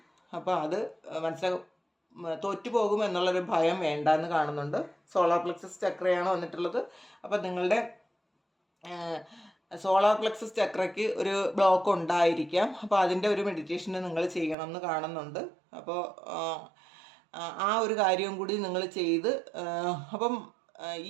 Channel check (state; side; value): drops out; left; at 14.6 s